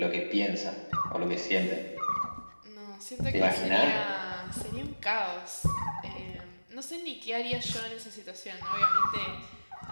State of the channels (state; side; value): inverted; both; correlation -1.00